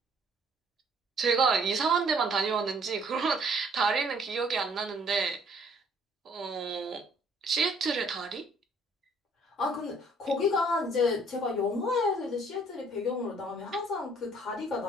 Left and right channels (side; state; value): both; normal; correlation 0.60